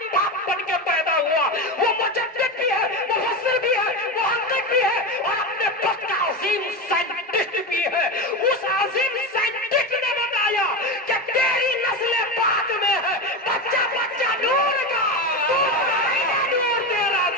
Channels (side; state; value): both; normal; correlation 0.19